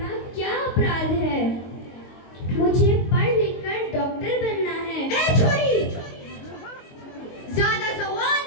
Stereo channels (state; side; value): late; right; 22 ms